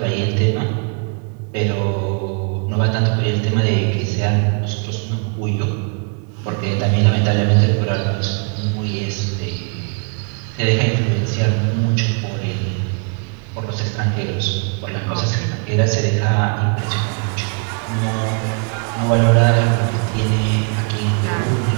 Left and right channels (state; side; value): quieter; left; 38.0 dB